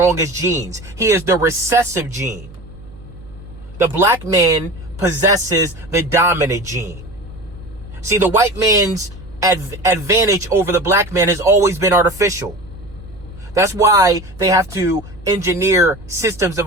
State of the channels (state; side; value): noise; right; hum, 20 dB below the sound